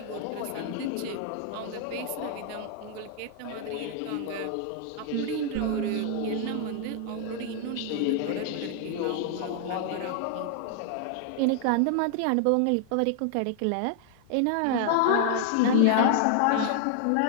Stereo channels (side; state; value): both; different; correlation 0.00